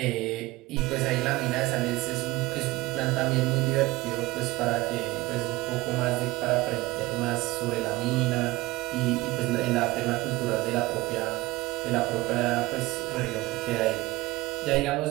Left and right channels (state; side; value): quieter; left; 20.0 dB